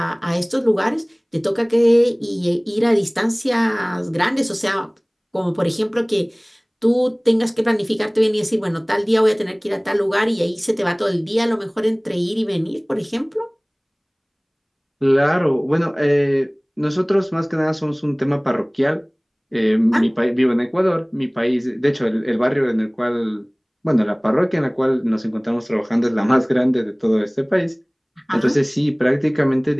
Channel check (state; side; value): identical; both; correlation 1.00